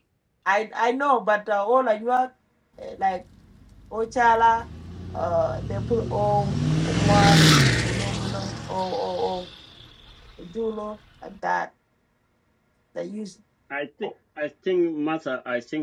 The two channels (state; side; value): identical; both; correlation 1.00